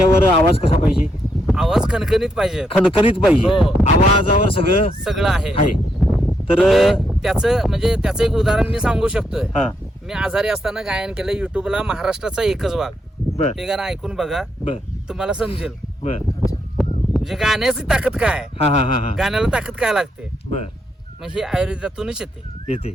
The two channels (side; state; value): both; normal; correlation 0.79